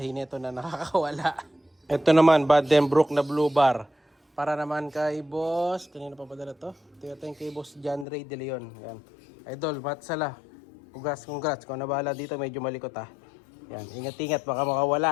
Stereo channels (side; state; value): right; drops out; at 8.1 s